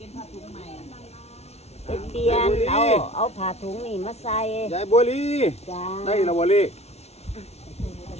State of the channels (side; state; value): right; late; 0.31 ms